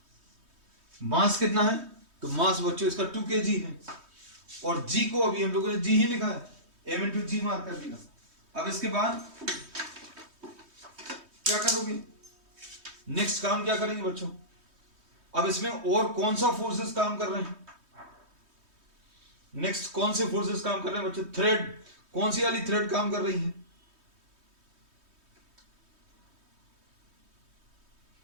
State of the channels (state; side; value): late; left; 3.2 ms